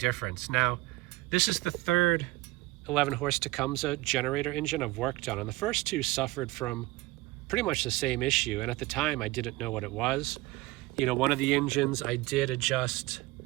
Now, this is the third 11 horse Tecumseh generator engine I've worked on, and the first two suffered from pretty much the same issue, and at the time I didn't know what it was. You know, one of the engines I did adjust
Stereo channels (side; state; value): left; quieter; 20.3 dB